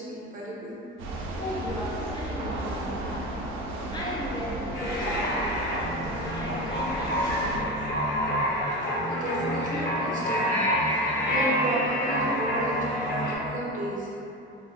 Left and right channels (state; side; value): normal; both; correlation 0.23